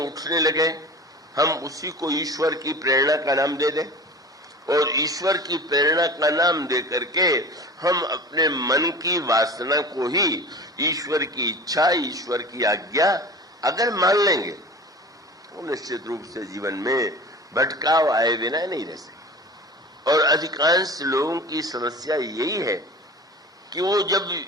लगे, हम उसी को ईश्वर की प्रेरणा का नाम दे दें और ईश्वर की प्रेरणा का नाम दे करके हम अपने मन की वासना को ही ईश्वर की इच्छा, ईश्वर की आज्ञा अगर मान लेंगे तो निश्चित रूप से जीवन में भटकाव आए बिना नहीं रह सकते। और अधिकांश लोगों की समस्या यही है कि वो जब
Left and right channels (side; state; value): both; normal; correlation 0.37